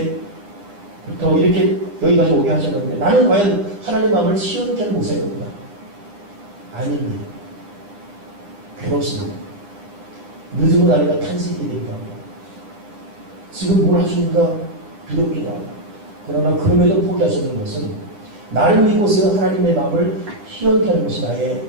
이렇게 여기까지 오게 하셨는데 나는 과연 하나님의 마음을 시원케 하는 목사입니다. 아닙니다. 괴롭습니다. 늦은 날이가 탄식이 되기도 합니다. 지금 뭘 하십니까? 두렵기도 하고. 그러나 그럼에도 포기할 수 없는 것은 나를 믿고서 하나님의 마음을 시원케 하는 것이 나의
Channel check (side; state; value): left; late; 9.8 ms